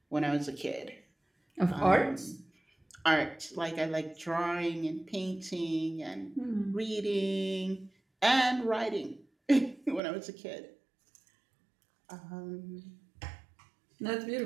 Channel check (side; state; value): left; drops out; at 10.0 s